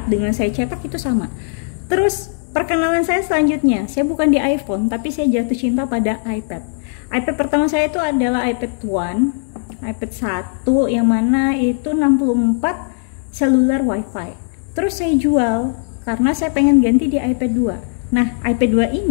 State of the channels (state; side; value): silent; right; digital silence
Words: dengan saya cetak itu sama. Terus perkenalan saya selanjutnya, saya bukan di iPhone, tapi saya jatuh cinta pada iPad. iPad pertama saya itu adalah iPad One, iPad 1 yang mana itu 64 seluler WiFi. Terus saya jual karena saya pengen ganti di iPad 2. Nah, iPad 2